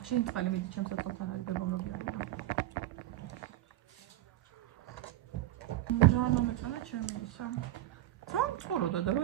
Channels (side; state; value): left; quieter; 14.7 dB